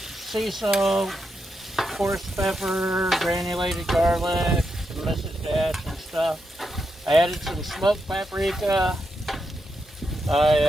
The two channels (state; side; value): normal; both; correlation 0.84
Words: salt, coarse pepper, granulated garlic, some Mrs. Dash and stuff. I added some smoked paprika.